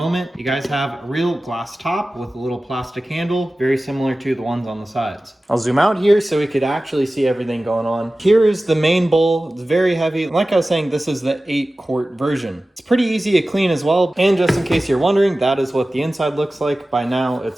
You guys have a real glass top with a little plastic handle, very similar to the ones on the sides. I'll zoom out here so we could actually see everything going on. Here is the main bowl. It's very heavy. Like I was saying, this is the 8-quart version. It's pretty easy to clean as well. And just in case you're wondering, that is what the inside looks like. By now, it's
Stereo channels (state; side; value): normal; both; correlation 0.96